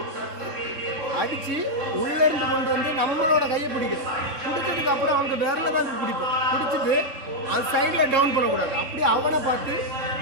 அடித்து உள்ளேருந்து கொண்டு வந்து நம்மளோட கையை பிடிக்கும். பிடிச்சதுக்கு அப்புறம் அவங்க விரல தான் பிடிப்போம். பிடிச்சிட்டு அது சைடில் டவுன் பண்ணக்கூடாது. அப்படியே அவனை பார்த்து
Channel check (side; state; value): left; late; 3.7 ms